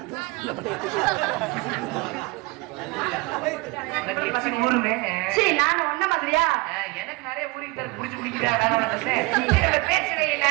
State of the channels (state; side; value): quieter; left; 24.2 dB